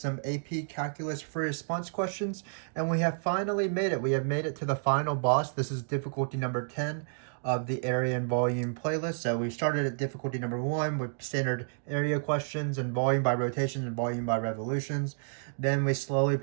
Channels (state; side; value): silent; left; digital silence